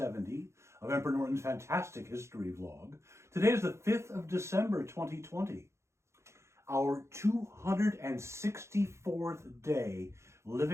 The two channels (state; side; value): late; left; 0.13 ms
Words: of Emperor Norton's Fantastic History Vlog. Today is the 5th of December, 2020. Our 264th day